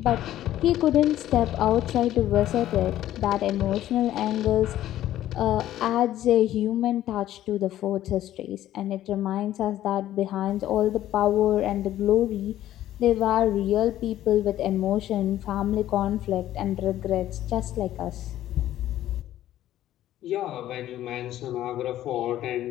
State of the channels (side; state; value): right; quieter; 13.1 dB